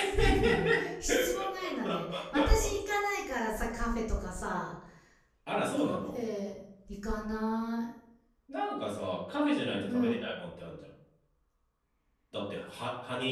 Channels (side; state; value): both; identical; correlation 1.00